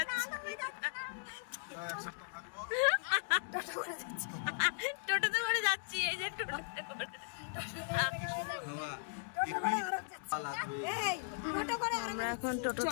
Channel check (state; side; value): silent; right; digital silence